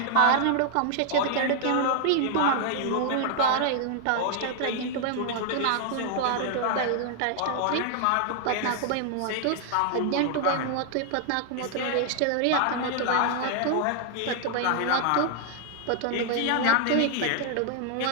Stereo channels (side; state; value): both; different; correlation 0.00